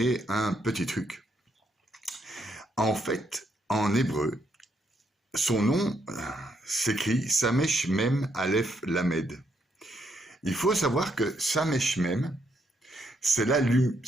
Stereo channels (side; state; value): both; normal; correlation 0.75